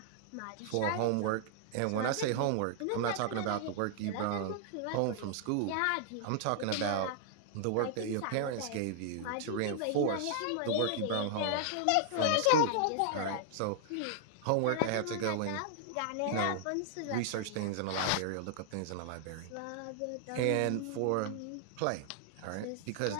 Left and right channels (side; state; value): both; different; correlation -0.01